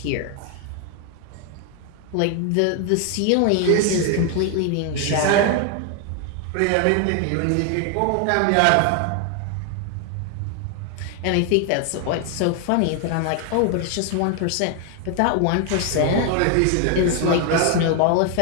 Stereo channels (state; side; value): different; both; correlation 0.00